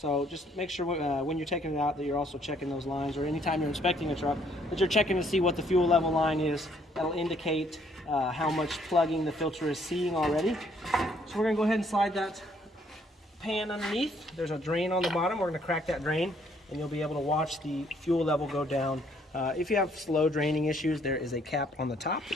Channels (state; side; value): normal; both; correlation 0.66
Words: just make sure when you're taking it out that you're also checking those lines, or anytime you're inspecting a truck, that you're checking to see what the fuel level line is. That'll indicate how much plugging the filter is seeing already. So we're going to go ahead and slide that pan underneath. There's a drain on the bottom. We're going to crack that drain, and you'll be able to watch the fuel level go down. If you have slow draining issues, there is a cap on the top